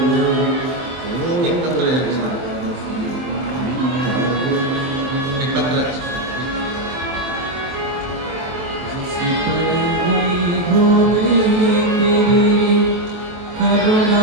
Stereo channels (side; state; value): left; late; 23 ms